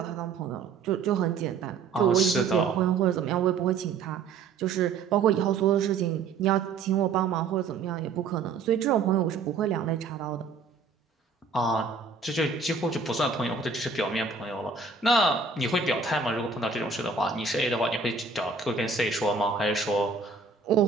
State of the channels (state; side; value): quieter; left; 4.9 dB